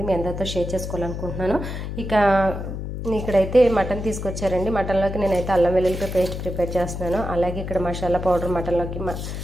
మీ అందరితో షేర్ చేసుకోవాలనుకుంటున్నాను. ఇక ఇక్కడైతే మటన్ తీసుకొచ్చారండి. మటన్లోకి నేనైతే అల్లం వెల్లుల్లి పేస్ట్ ప్రిపేర్ చేస్తున్నాను. అలాగే ఇక్కడ మసాలా పౌడర్, మటన్లోకి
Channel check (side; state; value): left; noise; hum, 6 dB below the sound